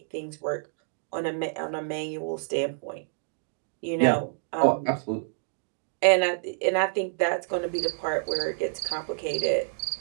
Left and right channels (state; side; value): silent; left; digital silence